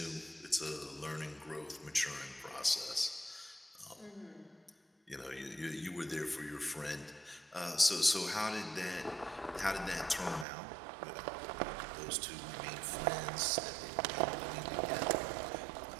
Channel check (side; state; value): left; drops out; at 10.5 s